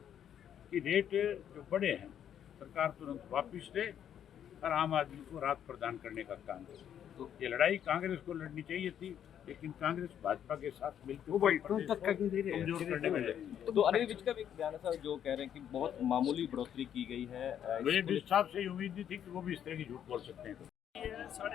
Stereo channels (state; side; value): quieter; right; 9.5 dB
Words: कि रेट जो बड़े हैं सरकार तुरंत वापस ले और आम आदमी को राहत प्रदान करने का काम करे। तो ये लड़ाई कांग्रेस को लड़नी चाहिए थी, लेकिन कांग्रेस भाजपा के साथ मिलकर कमजोर करने में लगी। तो अनिल विज का भी एक बयान है सर, जो कह रहे हैं कि बहुत मामूली बढ़ोतरी की गई है। मुझे विज साहब से उम्मीद नहीं थी कि वो भी इस तरह की झूठ बोल सकते हैं।